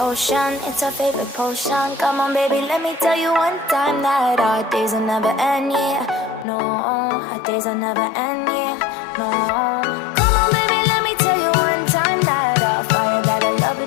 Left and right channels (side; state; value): right; drops out; at 6.5 s